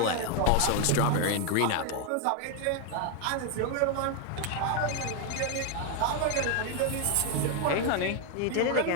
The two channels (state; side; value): different; both; correlation 0.01